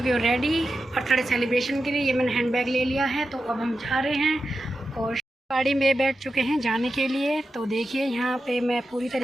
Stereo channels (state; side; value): normal; both; correlation 0.90